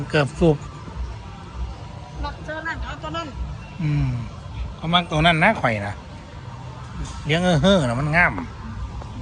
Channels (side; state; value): both; identical; correlation 1.00